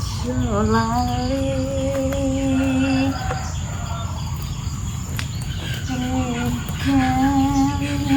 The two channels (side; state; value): both; identical; correlation 1.00